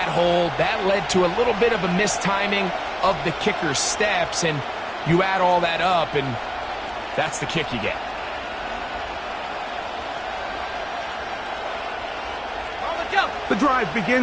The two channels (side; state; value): both; identical; correlation 1.00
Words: hold. That led to a little bit of a mistiming of the kicker's steps. And you add all that up, and that's the kick you get. The drive